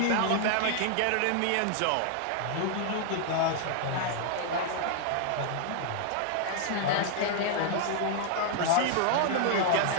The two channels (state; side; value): different; both; correlation 0.00